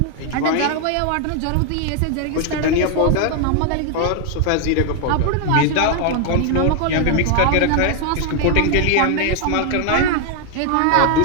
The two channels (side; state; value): both; different; correlation 0.00